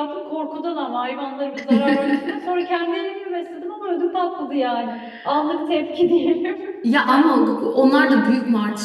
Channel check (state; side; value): identical; both; correlation 1.00